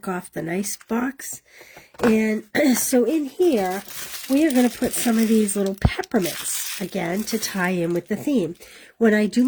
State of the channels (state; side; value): identical; both; correlation 1.00